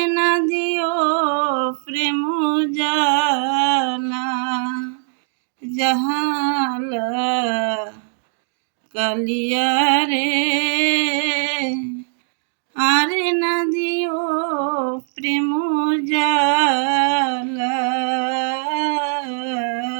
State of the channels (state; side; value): silent; left; digital silence